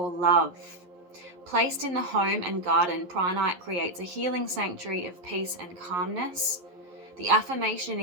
love. Placed in the home and garden, Pranite creates a healing sanctuary of peace and calmness. The affirmation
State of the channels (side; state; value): left; late; 11 ms